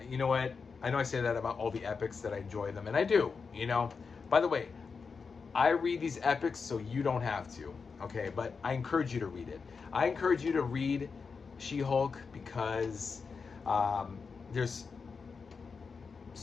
you know what? I know I say that about all the epics that I enjoy them, and I do, you know. By the way, I read these epics so you don't have to, okay? But I encourage you to read it. I encourage you to read She-Hulk because there's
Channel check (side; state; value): right; quieter; 5.2 dB